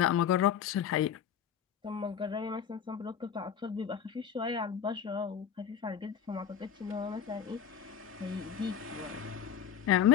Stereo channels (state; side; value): quieter; right; 8.6 dB